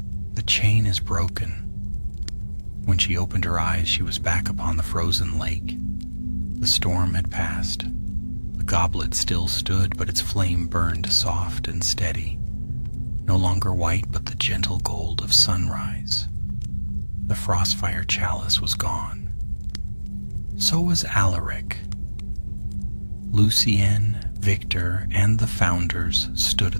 The chain is broken. When she opened her eyes, she was back upon the frozen lake. The storm had passed. The goblet still stood, but its flame burned soft and steady. No longer white, but the gentle gold of sunrise. The frostfire chalice was gone. So was Alaric. Lucien, Victor, and the Founders stood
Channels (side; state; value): both; inverted; correlation -1.00